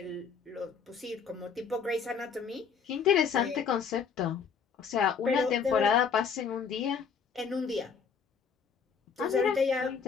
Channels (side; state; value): right; quieter; 6.2 dB